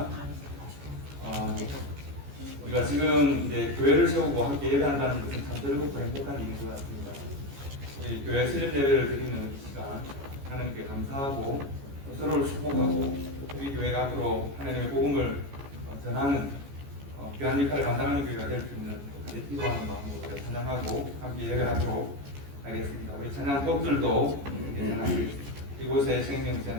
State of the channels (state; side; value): late; left; 14 ms